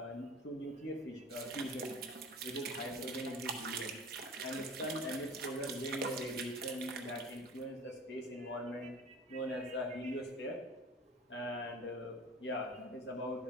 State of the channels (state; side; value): normal; both; correlation 0.40